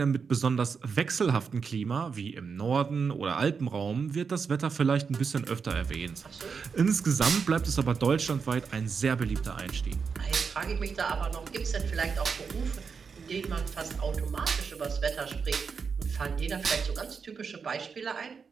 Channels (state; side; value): quieter; left; 5.7 dB